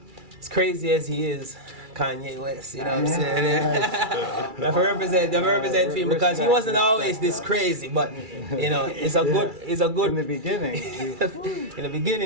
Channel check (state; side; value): late; left; 2.3 ms